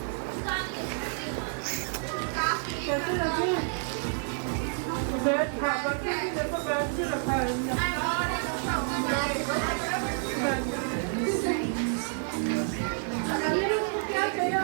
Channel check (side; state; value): left; silent; 58 dB below the other